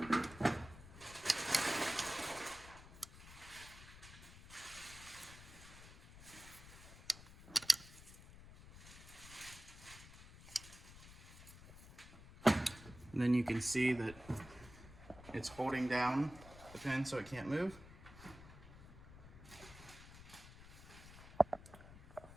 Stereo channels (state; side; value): noise; left; rumble, 17 dB below the sound